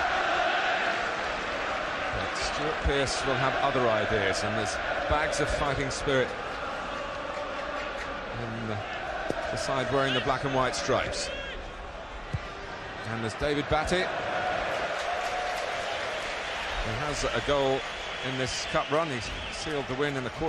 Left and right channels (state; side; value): identical; both; correlation 1.00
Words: But Stuart Pearce will have other ideas, and there's bags of fighting spirit in the side wearing the black and white stripes. And there's David Batty. He has a goal in this cup run. He's sealed the win in the